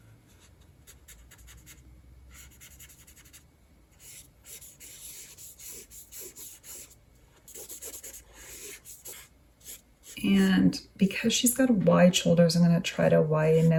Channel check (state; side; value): identical; both; correlation 1.00